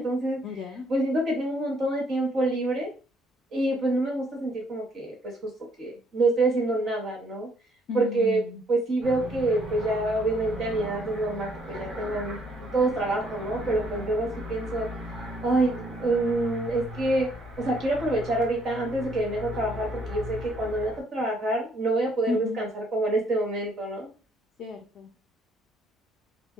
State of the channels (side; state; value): both; normal; correlation 0.67